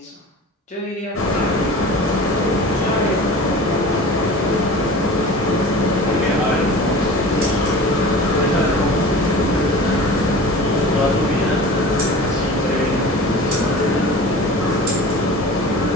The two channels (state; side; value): normal; both; correlation 0.38